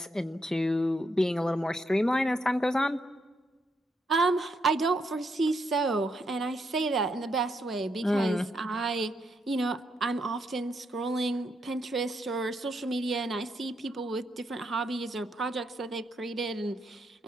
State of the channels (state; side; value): normal; both; correlation 0.79